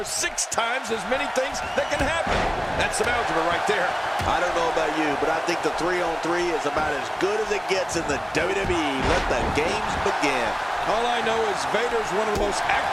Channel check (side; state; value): both; identical; correlation 1.00